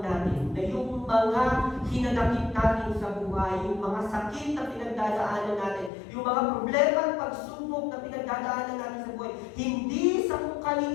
na yung mga hinanakit natin sa buhay, yung mga sakit na pinagdadaanan natin, yung mga problema at pagsubok na pinagdadaanan natin sa buhay, hindi sa kung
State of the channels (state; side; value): drops out; right; at 5.9 s